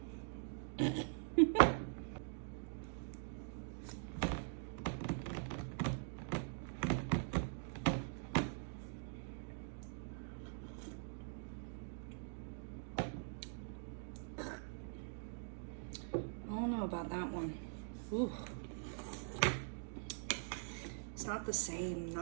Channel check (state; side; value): silent; left; digital silence